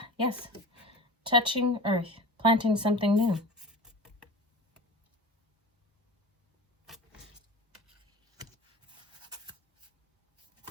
yes. Touching earth, planting something new.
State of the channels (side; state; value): both; normal; correlation 0.33